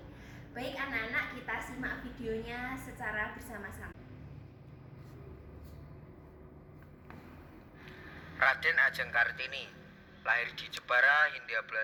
Baik anak-anak, kita simak videonya secara bersama-sama. Raden Ajeng Kartini lahir di Jepara, Hindia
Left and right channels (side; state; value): both; identical; correlation 1.00